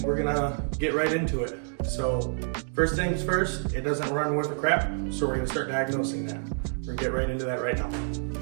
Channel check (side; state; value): left; silent; 59 dB below the other